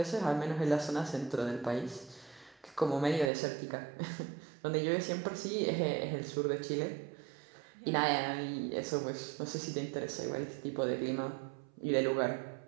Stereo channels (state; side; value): drops out; left; at 3.3 s